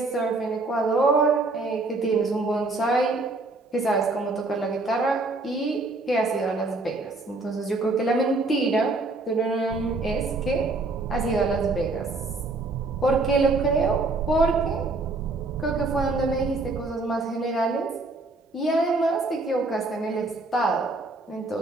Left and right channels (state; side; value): quieter; left; 3.2 dB